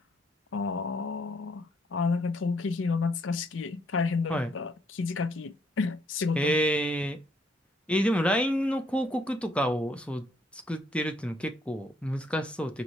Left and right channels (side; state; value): both; normal; correlation 0.70